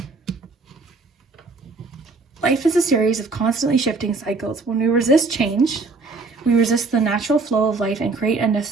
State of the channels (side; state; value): left; quieter; 3.9 dB